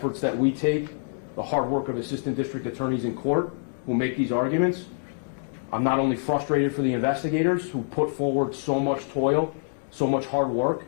that we take, the hard work of assistant district attorneys in court who make these arguments. I'm not only frustrated for the investigators who put forward so much toil, so much hard work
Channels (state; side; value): silent; right; 61 dB below the other